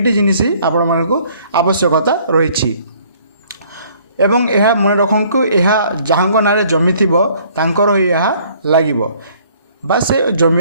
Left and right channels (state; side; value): inverted; both; correlation -0.59